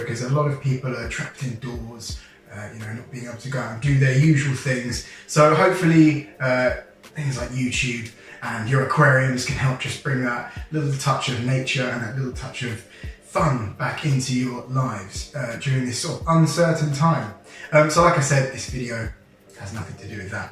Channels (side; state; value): both; identical; correlation 1.00